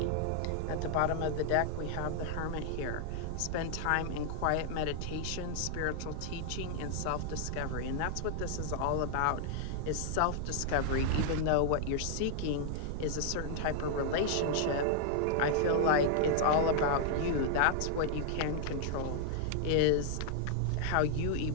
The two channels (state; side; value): different; both; correlation 0.00